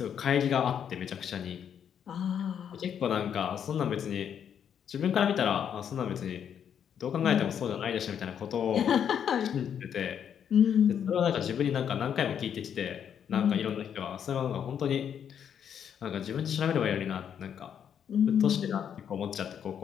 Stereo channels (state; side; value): quieter; right; 8.5 dB